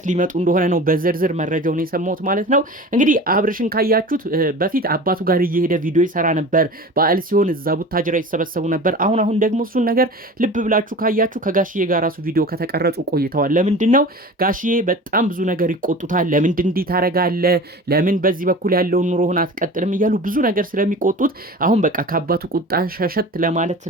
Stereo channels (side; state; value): both; normal; correlation 0.36